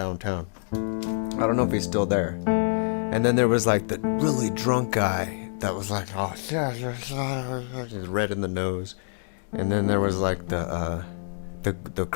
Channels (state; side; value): silent; right; 61 dB below the other